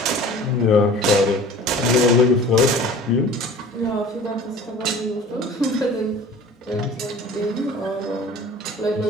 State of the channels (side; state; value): both; normal; correlation 0.44